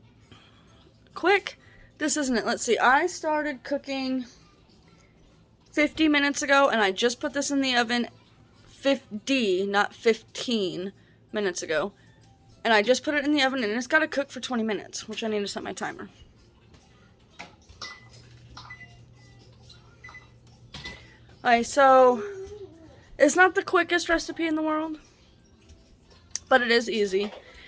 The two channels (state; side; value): identical; both; correlation 1.00